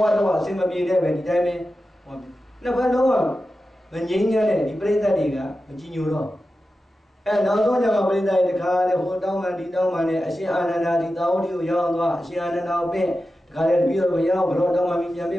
ဝတော့အဆင်မပြေတဲ့ပဲဒီတိုင်းပဲနှစ်ဖက်လုံးကမငြိမ်းချမ်းတဲ့ဒီပြိဿတွေကမကြည်ညိုတော့နောက်ဆုံးကျမှပြိဿရဲ့တခါလေဟိုတောင်းမှဒီတောင်းမှနဲ့အရှင်အာနန္ဒာဒီတာဝတိကိုရောက်သွားအရှင်အာနန္ဒာကိုပြင်တခါလေတပည့်တော်ရောက်ဘလို့တောင်းမှပြီးပြန်ပြ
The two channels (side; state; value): both; normal; correlation 0.92